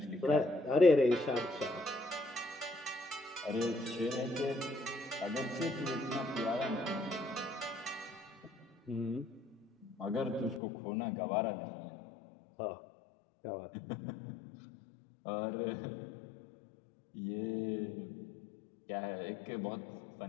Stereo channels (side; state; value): right; drops out; at 10.6 s